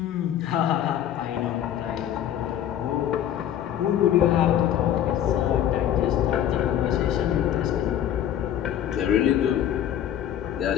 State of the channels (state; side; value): quieter; right; 10.7 dB